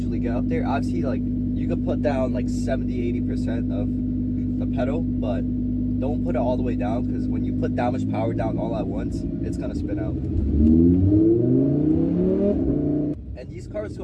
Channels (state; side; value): identical; both; correlation 1.00